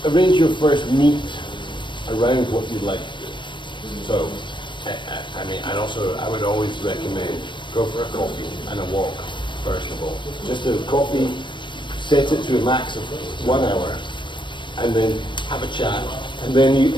first meet around what you'd like to do. So I would always recommend go for a coffee and a walk first of all. Just a coffee, set it to a max of 1 hour, and then have a chat, and then you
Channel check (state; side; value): late; right; 0.23 ms